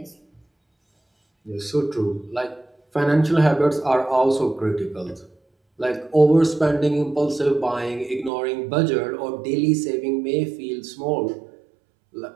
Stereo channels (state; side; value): drops out; left; at 8.3 s